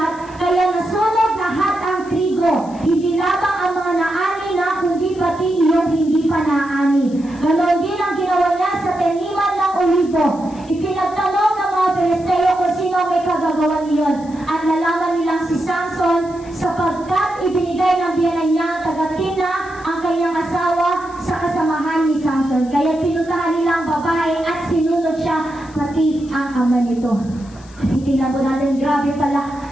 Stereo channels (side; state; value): left; noise; hiss, 25 dB below the sound